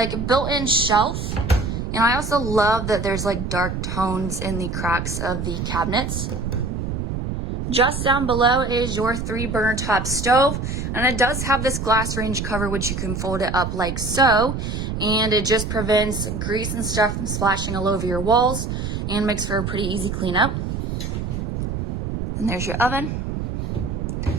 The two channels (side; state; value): right; noise; rumble, 4 dB below the sound